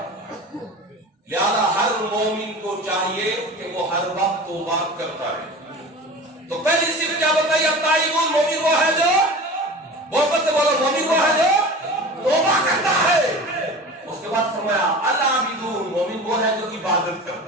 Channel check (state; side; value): normal; both; correlation 0.35